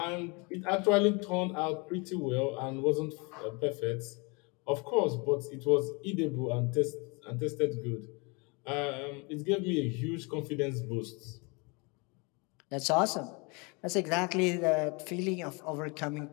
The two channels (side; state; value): right; quieter; 29.9 dB